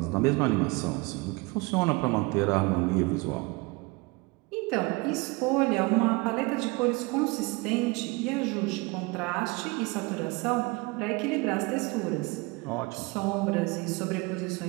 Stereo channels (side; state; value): left; quieter; 26.0 dB